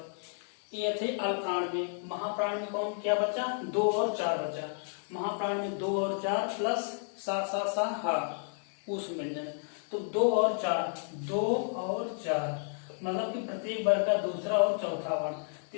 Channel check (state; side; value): silent; right; 57 dB below the other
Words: ये थे अल्प प्राण में। महाप्राण में कौन क्या बचा, 2 और 4 बचा। महाप्राण में 2 और 4 प्लस सा सा सा हा उस व्यंजन। तो 2 और 4, 2 और 4 मतलब कि प्रत्येक वर्ग का दूसरा और चौथा वर्ण।